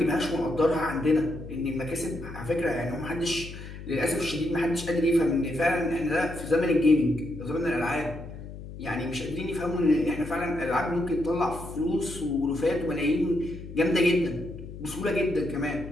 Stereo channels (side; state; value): left; noise; hum, 12 dB below the sound